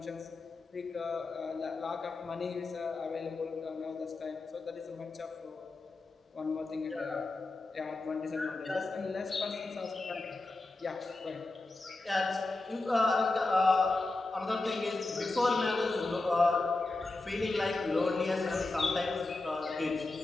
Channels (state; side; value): quieter; right; 3.2 dB